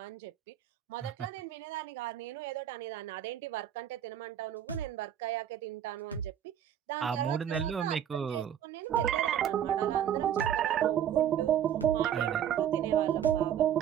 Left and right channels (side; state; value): left; quieter; 9.9 dB